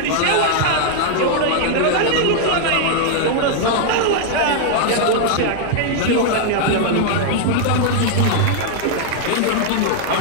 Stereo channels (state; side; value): different; both; correlation 0.00